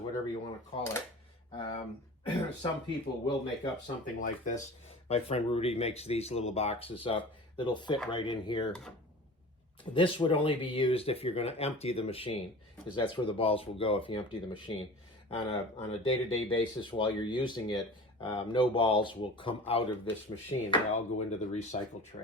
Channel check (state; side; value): normal; both; correlation 0.38